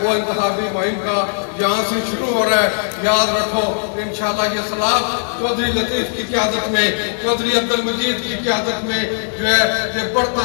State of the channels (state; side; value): silent; right; 67 dB below the other